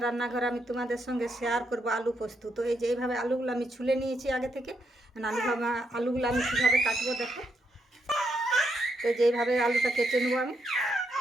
রান্নাঘর আমি তোমাদের সঙ্গে শেয়ার করব আলু পোস্ত। তো এই যে এইভাবে আলুগুলো আমি ছুলে নিয়েছি আগে থেকে। আলুগুলো আমি কীভাবে কাটবো দেখো। তো যেইভাবে আলুটা কেটে নেবো আমি,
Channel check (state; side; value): normal; both; correlation 0.79